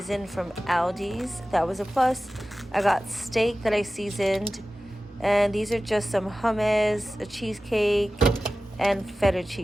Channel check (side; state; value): both; normal; correlation 0.95